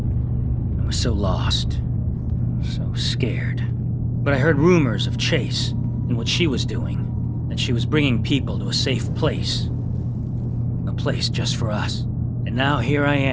I was so lost, so scared. But I heard rumors of Chase and what she was doing, that she was bringing people to a safe place. A place just for us. And now here I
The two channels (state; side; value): identical; both; correlation 1.00